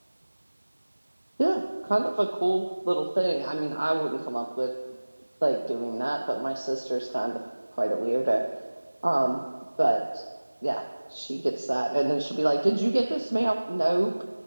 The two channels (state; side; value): inverted; both; correlation -1.00